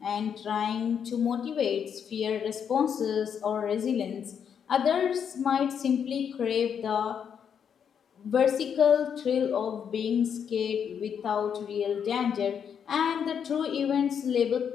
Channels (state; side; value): quieter; right; 7.7 dB